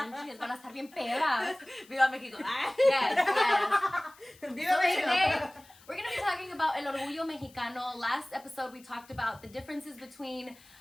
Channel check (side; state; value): left; noise; hiss, 25 dB below the sound